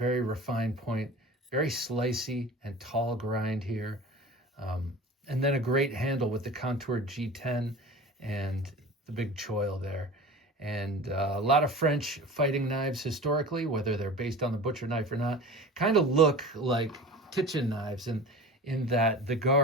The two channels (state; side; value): normal; both; correlation 0.36